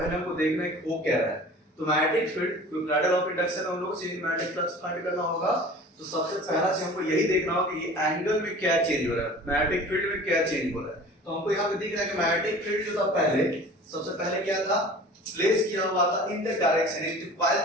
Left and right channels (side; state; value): both; normal; correlation 0.42